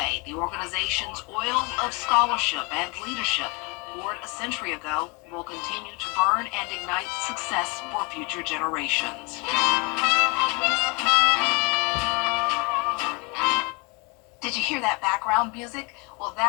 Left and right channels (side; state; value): right; quieter; 29.0 dB